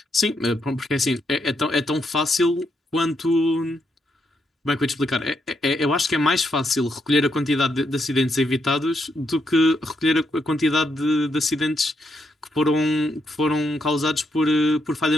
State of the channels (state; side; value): normal; both; correlation 0.79